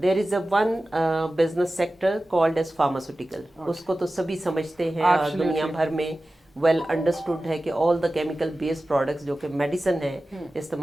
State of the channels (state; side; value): normal; both; correlation 0.95